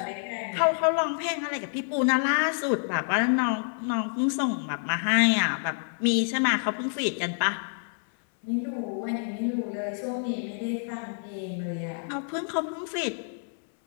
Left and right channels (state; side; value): silent; right; 59 dB below the other